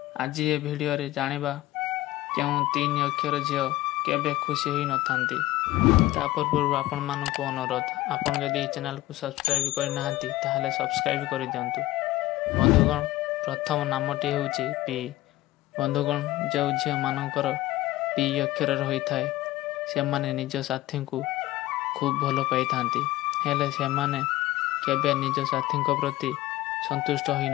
आज ये वीडियो रे जानिबा केउ 3 अक्षर झियो केबे खुशी ही नथांती। तापर पूर्व आपण मानक अनुरोध, आपण जदि चैनल को सब्सक्राइब कर नाहंती ताहले सब्सक्राइब कर दियंतु। बंधुगण, प्रथम नामटी हेउची पी। बंधुगण, जो झियो मानकर पी अक्षर रही थाए से माने निज साथी को खूब भल पाई थांती, हेले से माने केबे निज साथी को प्रति संतुष्ट होई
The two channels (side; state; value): right; quieter; 16.6 dB